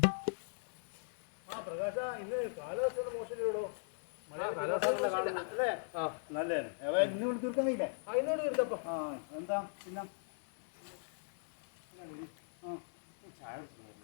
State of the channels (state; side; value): silent; right; digital silence